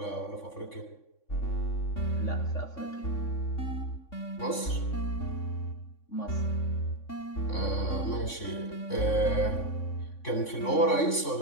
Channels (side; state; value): right; late; 3.6 ms